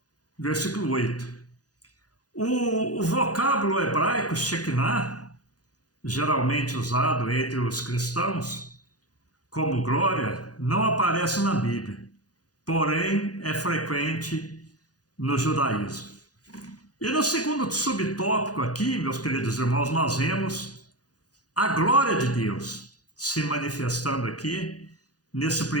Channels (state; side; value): late; right; 0.68 ms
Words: versículo 8. O vocábulo hebraico Shekinah, geralmente usado entre os cristãos como glória, não aparece na Bíblia, porém é frequente no judaísmo. E no segundo subtópico aqui, meus queridos irmãos, nós vemos a glória de Deus se manifestando aqui nesse